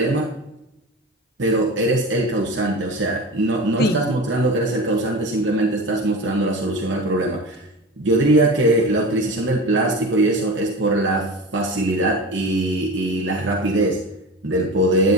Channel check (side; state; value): both; normal; correlation 0.30